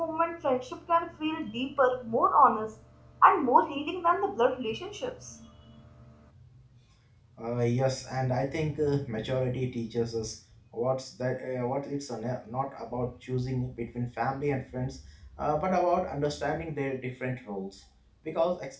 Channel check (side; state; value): both; identical; correlation 1.00